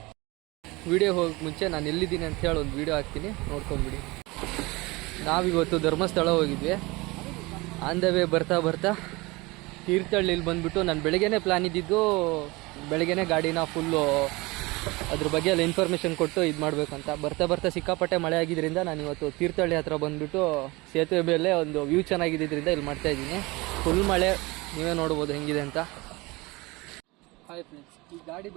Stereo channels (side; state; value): left; quieter; 23.3 dB